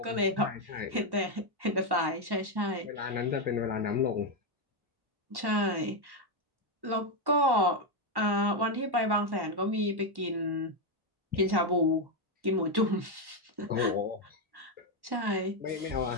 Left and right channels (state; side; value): late; left; 1.1 ms